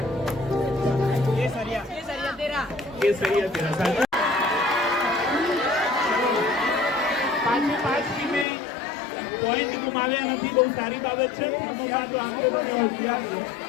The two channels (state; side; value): drops out; right; at 8.5 s